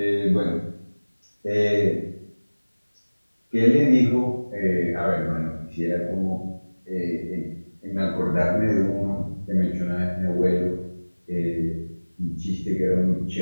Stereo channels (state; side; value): inverted; both; correlation -1.00